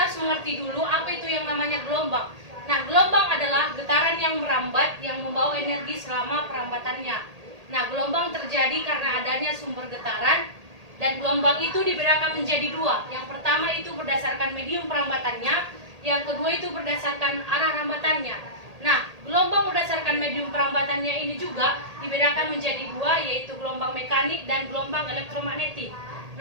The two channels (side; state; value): left; late; 1.8 ms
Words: harus mengerti dulu apa itu yang namanya gelombang. Nah, gelombang adalah getaran yang merambat yang membawa energi selama perambatannya. Nah, gelombang terjadi karena adanya sumber getaran, dan gelombang itu dibedakan menjadi dua. Yang pertama itu berdasarkan medium perambatannya, yang kedua itu berdasarkan arah rambatannya. Nah, gelombang berdasarkan medium perambatannya ini juga dibedakan menjadi dua, yaitu gelombang mekanik dan gelombang elektromagnetik.